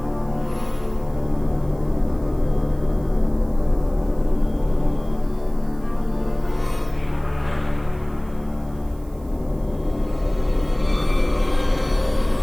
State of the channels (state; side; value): noise; right; hiss, 28 dB below the sound